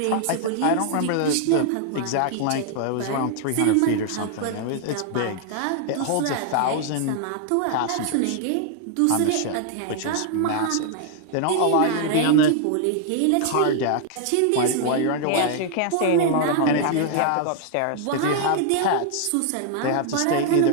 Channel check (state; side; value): different; both; correlation 0.00